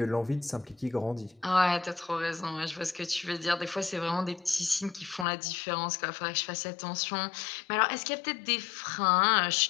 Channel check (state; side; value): drops out; right; at 5.2 s